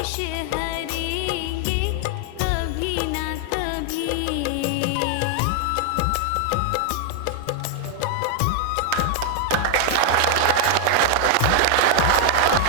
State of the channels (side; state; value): both; different; correlation 0.00